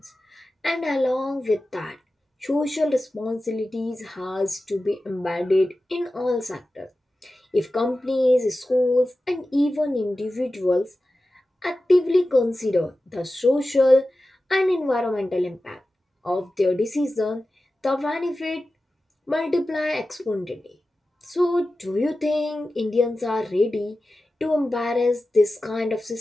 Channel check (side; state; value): both; normal; correlation 0.94